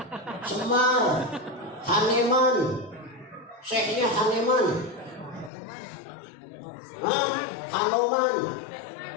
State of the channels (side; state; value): right; drops out; at 5.5 s